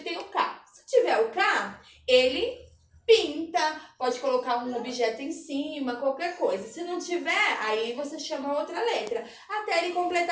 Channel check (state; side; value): identical; both; correlation 1.00